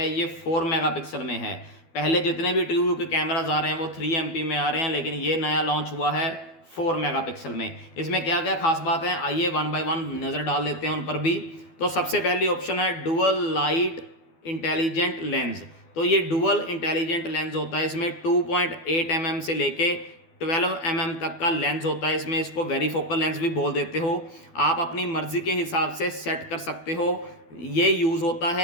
ये 4 मेगापिक्सल में है। पहले जितने भी ट्रूव्यू के कैमराज आ रहे हैं वो 3 MP में आ रहे हैं, लेकिन ये नया लॉन्च हुआ है 4 मेगापिक्सल में। इसमें क्या क्या खास बात है, आइए वन बाय वन नज़र डाल लेते हैं उन पर भी। तो सबसे पहली ऑप्शन है डुअल लाइट इंटेलिजेंट लेंस। तो ये डुअल इंटेलिजेंट लेंस होता है, इसमें 2.8 mm से लेके 12 mm तक का लेंस होता है। इसमें इसको वेरीफोकल लेंस भी बोल देते हो। आप अपनी मर्जी के हिसाब से सेट कर सकते हो। ये यूज़ होता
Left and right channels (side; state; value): right; late; 12 ms